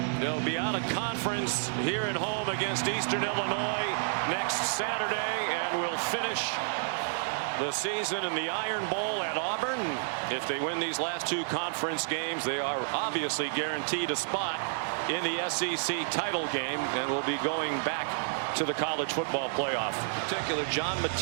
They'll be out of conference here at home against Eastern Illinois next Saturday, and will finish the season in the Iron Bowl at Auburn. If they win these last 2 conference games, they are obviously guaranteed a spot in the SEC title game and will be going back to the college football playoff. In particular, John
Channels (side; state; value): left; silent; digital silence